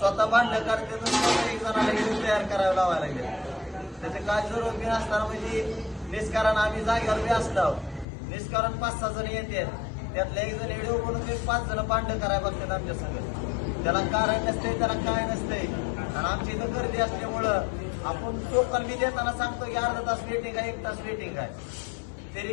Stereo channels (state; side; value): drops out; right; at 8.1 s